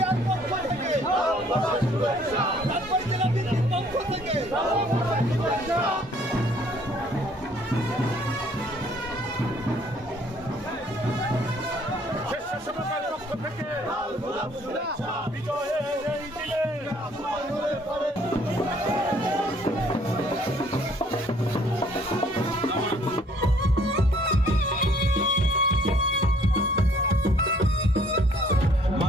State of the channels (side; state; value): both; normal; correlation 0.61